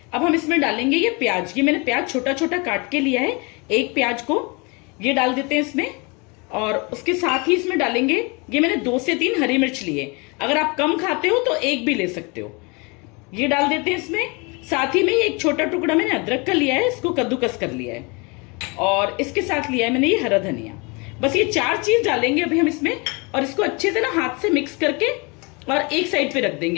अब हम इसमें डालेंगे ये प्याज। ये मैंने प्याज छोटा छोटा काट के लिया है, एक प्याज को ये डाल देते हैं इसमें। और उसके साथ ही इसमें डालेंगे, ये मैंने 2 से 3 हरी मिर्च लिए। अगर आप कम खाते हो तो एक भी ले सकते हो। ये डाल देते हैं इसमें। साथ ही में एक छोटा टुकड़ा मैंने अदरक का लिया है, इसको कद्दूकस कर लिया है। और इसके साथ लिया है मैंने ये हरा धनिया। बस ये 4 चीज डालेंगे अभी हम इसमें, और इसको अच्छे से ना हाथ से मिक्स करके और एक साइड पे रख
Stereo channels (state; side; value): quieter; right; 29.4 dB